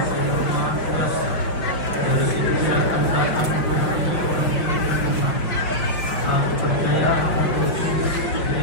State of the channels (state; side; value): late; right; 5.5 ms